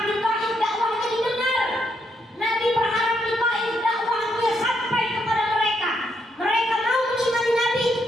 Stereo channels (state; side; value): normal; both; correlation 0.77